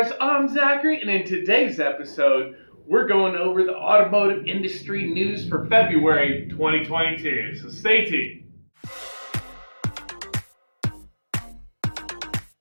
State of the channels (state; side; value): inverted; both; correlation -1.00